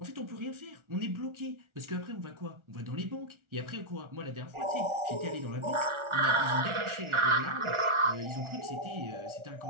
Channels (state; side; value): late; left; 1.4 ms